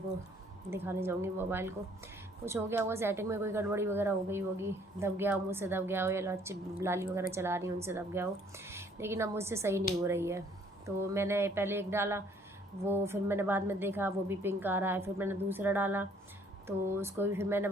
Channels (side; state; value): both; normal; correlation 0.61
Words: दिखाने जाऊँगी मोबाइल को, कुछ हो गया होगा सेटिंग में, कोई गड़बड़ी वगैरह हो गई होगी, दब गया हो, मुझसे दब गया हो, या लाली वगैरह चला रही हूँ उनसे दब गया हो। लेकिन अब मुझसे सही नहीं हो रही है। तो मैंने पहले एक डाला, वो फिर मैंने बाद में देखा वो भी पिंक आ रहा है। फिर मैंने दूसरा डाला तो उसको भी फिर मैंने